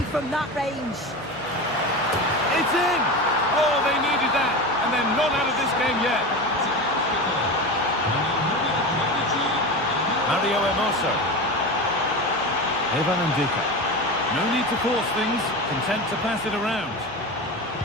from that range. It's in! Oh, they needed that. And they're not out of this game yet. Mario Hermoso. Evan Ndika. No need to force things. Content to pass it around.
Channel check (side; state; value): left; noise; hum, 25 dB below the sound